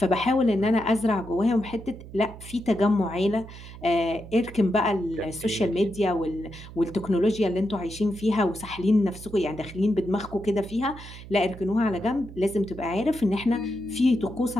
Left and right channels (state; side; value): noise; right; hum, 15 dB below the sound